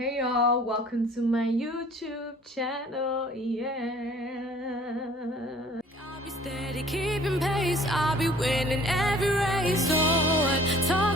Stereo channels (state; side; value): normal; both; correlation 0.53